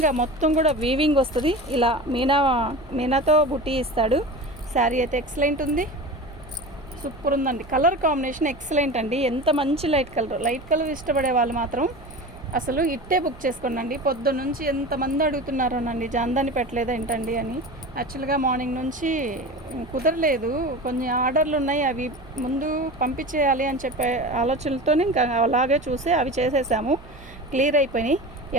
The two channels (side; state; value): right; noise; hum, 21 dB below the sound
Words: మొత్తం కూడా వీవింగ్ వస్తుంది. ఇలా మీనాతో బుట్టి ఇస్తాడు. శారీ అయితే ఎక్సలెంట్ ఉంది, సూపర్ ఉందండి. కలర్ కాంబినేషన్ ఎక్సలెంట్ అండి. ఎంత మంచి లైట్ కలర్ ఇష్టపడే వాళ్ళు మాత్రం అసలు ఇట్టే బుక్ చేసుకోండి. పొద్దున్న నుంచి ఎంతమంది అడుగుతున్నారోనండి, జాందాని పెట్టలేదు ఏంటండి అని. యాక్చువల్గా మార్నింగ్ నుంచి కుదరలేదు, కొన్ని ఆర్డర్లు ఉన్నాయి, అవి ముందు పంపించేయాలి అని చెప్పే ఆలోచనలతో ఇంకా అలాగే చూసి అవి చేసేసాము. క్లియర్ అయిపోయినాయి,